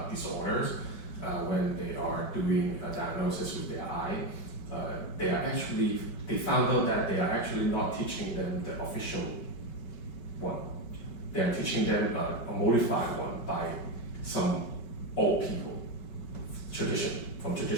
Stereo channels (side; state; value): right; late; 5.2 ms